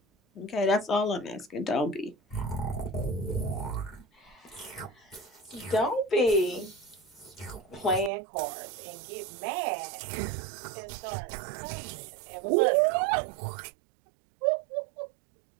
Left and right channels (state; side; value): drops out; left; at 8.1 s